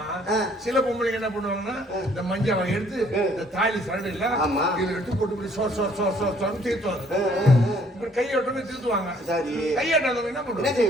சில பொம்பளைங்க என்ன பண்ணுவாங்கன்னா இந்த மஞ்சாவை எடுத்து இந்த தாலி சரடு இல்ல இதை எடுத்து போட்டு சோர் தீர்த்துவாங்க. கையோட்டமே தீர்த்துவாங்க. கையாட்டாதவங்க என்ன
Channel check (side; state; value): both; normal; correlation 0.62